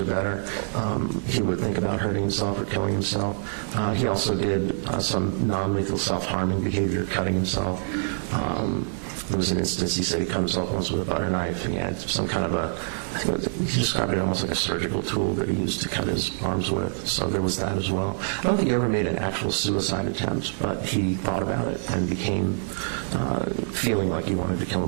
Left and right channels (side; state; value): left; silent; digital silence